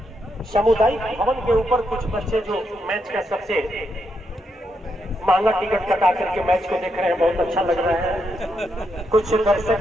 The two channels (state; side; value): normal; both; correlation 0.81